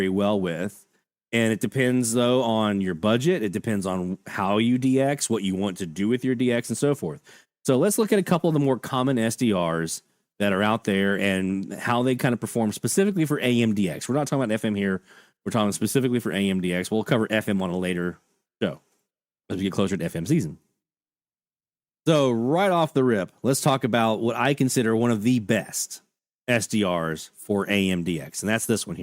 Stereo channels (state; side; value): identical; both; correlation 1.00